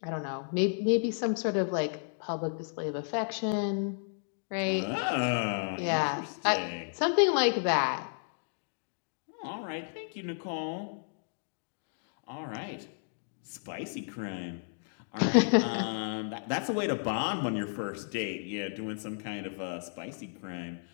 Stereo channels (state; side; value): silent; right; digital silence